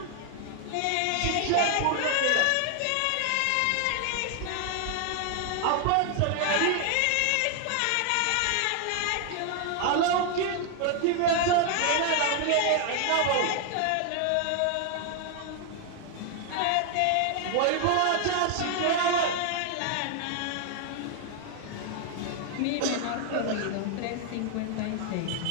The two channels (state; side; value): different; both; correlation 0.00